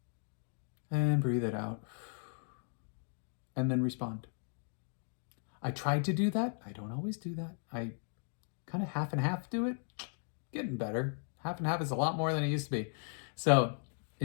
And breathe it out. And then respond. I tried to do that. I don't always do that. I kind of half and half do it. Getting better. Half and half is a lot more than it used to be. So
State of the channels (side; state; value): right; silent; 53 dB below the other